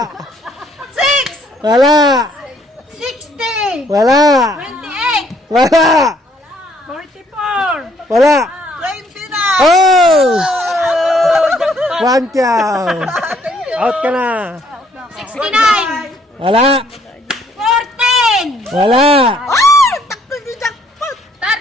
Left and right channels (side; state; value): both; normal; correlation 0.66